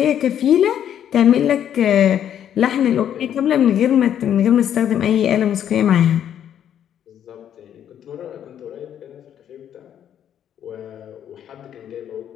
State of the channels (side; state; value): right; quieter; 9.8 dB